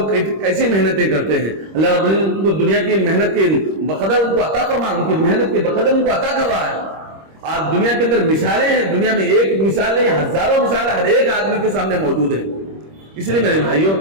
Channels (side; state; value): left; late; 26 ms